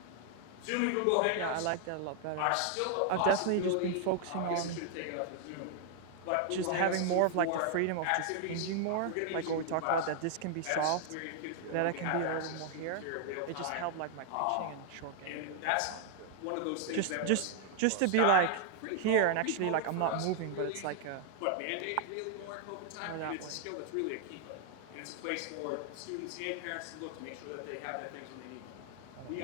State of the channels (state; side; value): different; both; correlation 0.00